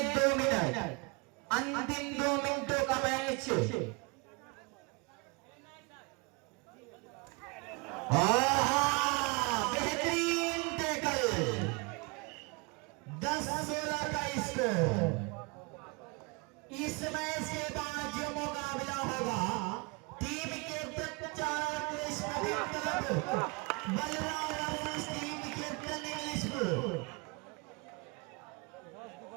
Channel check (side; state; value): left; quieter; 29.2 dB